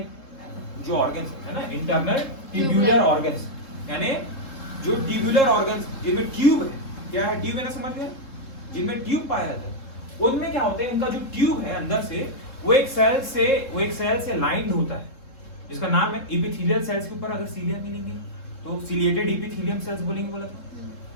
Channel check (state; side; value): late; right; 3.7 ms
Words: जो ऑर्गन्स है ना, इंटरनल ट्यूबुलर ऑर्गन्स, यानी जो ट्यूबुलर ऑर्गन्स जिनमें ट्यूब है, क्या है ट्यूब है ना, समझ गए, जिनमें ट्यूब पाया जाता है, उनमें क्या होता है, उनका जो ट्यूब है अंदर से वो एक सेल से लाइंड होता है जिसका नाम है एपिथेलियल सेल्स। के ऊपर अगर सीलिया मिलेंगे तो सिलिएटेड एपिथेलियम सेल्स बोलेंगे, बोला था,